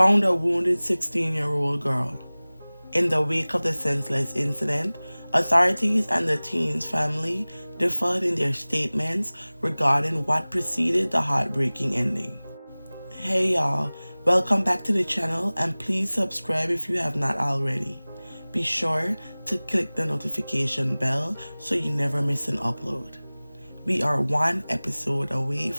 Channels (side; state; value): both; inverted; correlation -1.00